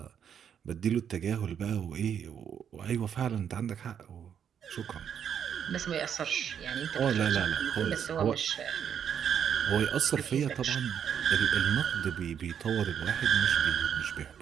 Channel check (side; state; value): left; quieter; 8.4 dB